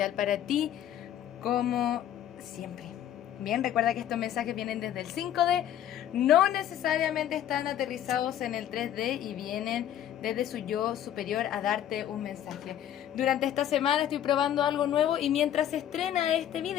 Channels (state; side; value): quieter; right; 10.8 dB